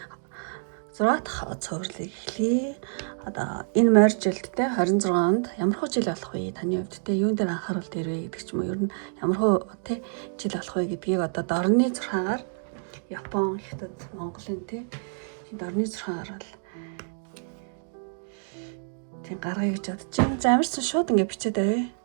6 дахь цувралыг эхлэе. Одоо энэ морь жилд те 26-нд ямар хөө жил болох вэ? Таны хувьд те юун дээр анхаарал дээрвэ гэдэг ч юм уу. Ер нь ямар хөө те жил болох вэ гэдгийг одоо дорны 6-аар Япон, Хятад, Монголын те дорны 6-аар бол тийм гаргая гэж бодож байна. За амарсан шууд ингэ бичээд авъя.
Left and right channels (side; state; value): left; silent; digital silence